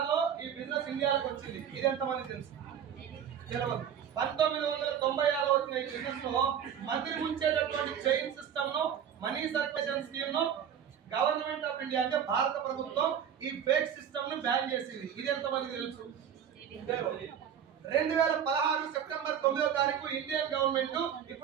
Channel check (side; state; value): left; quieter; 8.7 dB